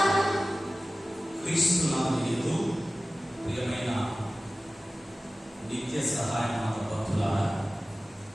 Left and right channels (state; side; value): normal; both; correlation 0.96